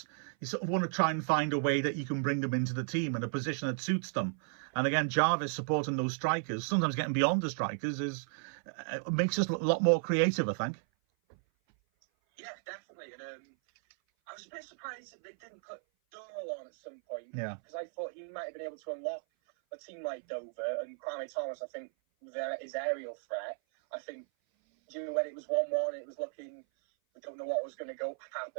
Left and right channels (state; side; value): silent; left; 55 dB below the other